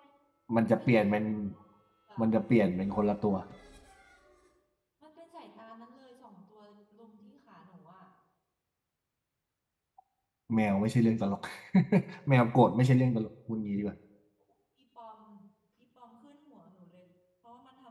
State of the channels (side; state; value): both; identical; correlation 1.00